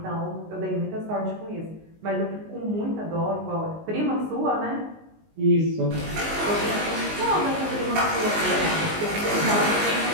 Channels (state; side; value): late; left; 19 ms